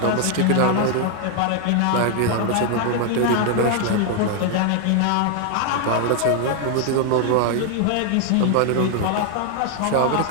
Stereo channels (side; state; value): both; different; correlation 0.00